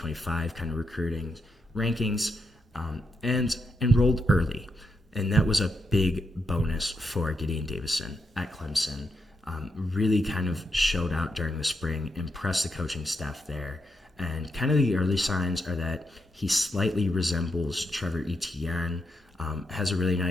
kind of recruiting rankings, and enrolled early. And that was a big bonus for Gideon Davison at Clemson. Really kind of showed out during the spring, impressed the coaching staff there. And kind of the early signs are that he slightly resembles Trevor Etienne, has a really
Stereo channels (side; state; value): both; normal; correlation 0.82